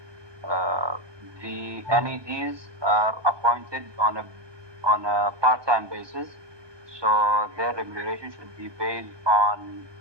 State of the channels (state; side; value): late; left; 1.2 ms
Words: the NEDs are appointed on a part-time basis, so their remuneration should be based on